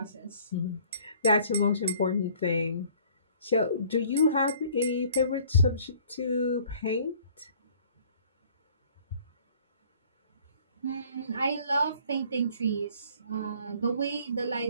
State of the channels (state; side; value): inverted; both; correlation -0.55